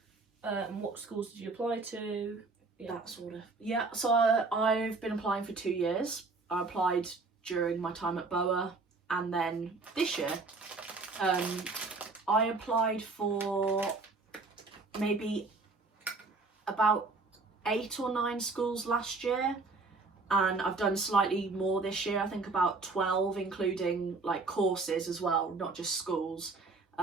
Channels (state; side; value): quieter; left; 3.8 dB